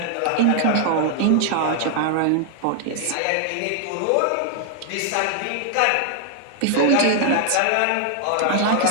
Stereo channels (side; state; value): both; different; correlation 0.00